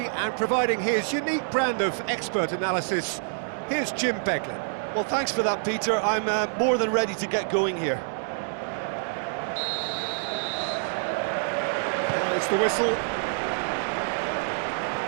and providing his unique brand of expert analysis, here's Jim Beglin. Well, thanks for that, Peter. I'm more than ready to get going here. There's the whistle.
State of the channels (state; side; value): silent; left; digital silence